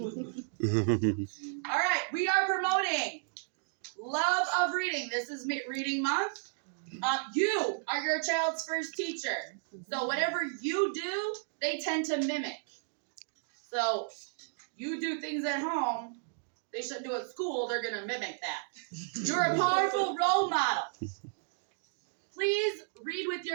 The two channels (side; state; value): left; silent; digital silence